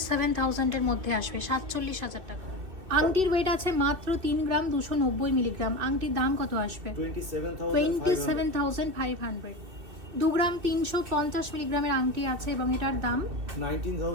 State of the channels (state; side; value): late; left; 2.7 ms